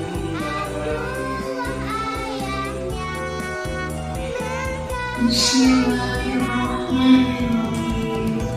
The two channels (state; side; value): identical; both; correlation 1.00